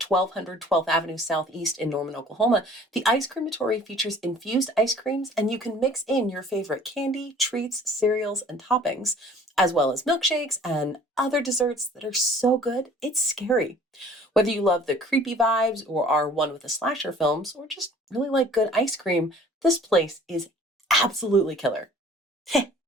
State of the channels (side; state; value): both; normal; correlation 0.51